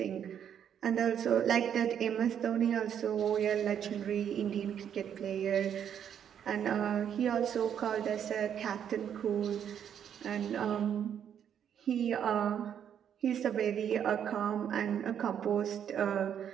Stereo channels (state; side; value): quieter; left; 8.9 dB